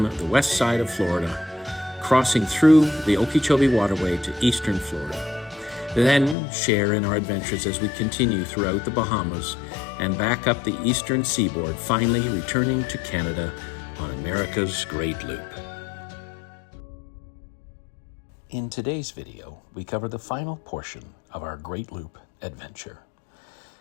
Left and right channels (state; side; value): drops out; right; at 6.4 s